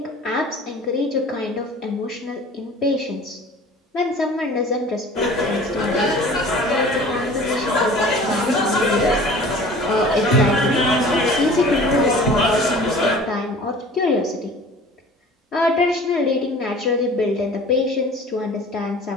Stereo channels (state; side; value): normal; both; correlation 0.44